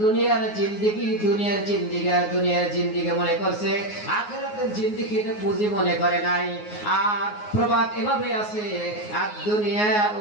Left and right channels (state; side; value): late; right; 9.5 ms